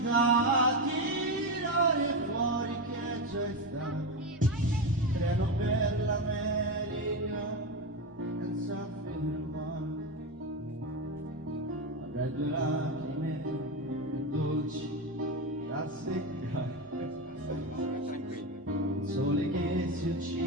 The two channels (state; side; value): normal; both; correlation 0.15